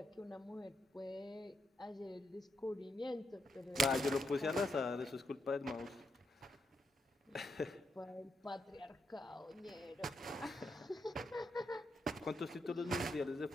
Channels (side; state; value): both; normal; correlation 0.81